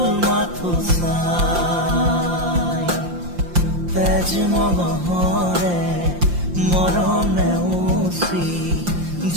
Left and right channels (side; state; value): left; late; 5.7 ms